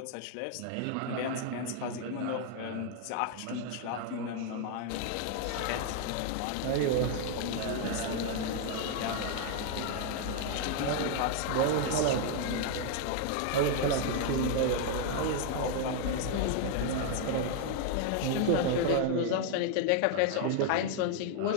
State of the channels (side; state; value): both; different; correlation 0.00